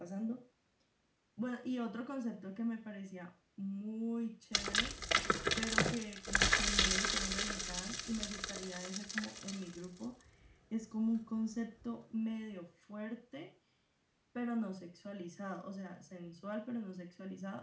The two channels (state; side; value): identical; both; correlation 1.00